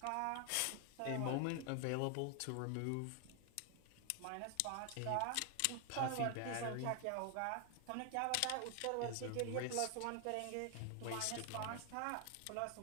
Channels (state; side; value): different; both; correlation 0.00